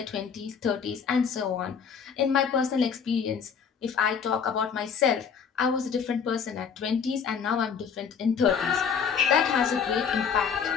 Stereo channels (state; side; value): quieter; right; 6.7 dB